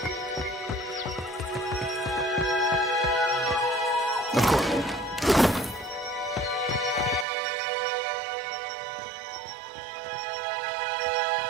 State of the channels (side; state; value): left; drops out; at 7.2 s